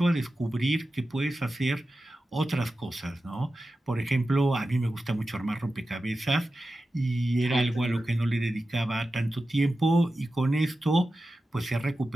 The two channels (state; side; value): normal; both; correlation 0.93